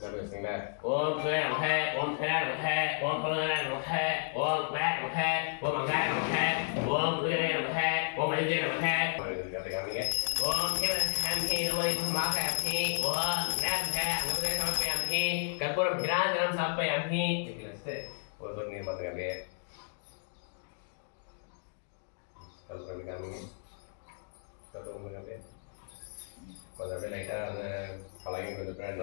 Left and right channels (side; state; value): right; silent; digital silence